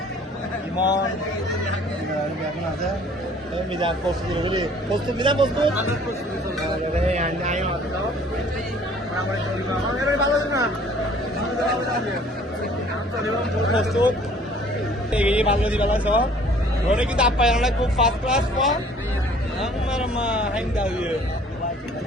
Imon, dia pun ada. Mizan post dulu beli. Post Mizan post tuh. Ada yang naik atau? Orang balas na. Post tuh. Ini balas di balas so. Orang kita apa yang lagi fast class kok? Amar mah hingga dia.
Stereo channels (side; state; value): both; normal; correlation 0.54